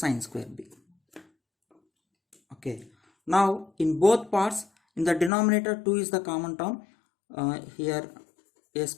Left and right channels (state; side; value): drops out; right; at 5.3 s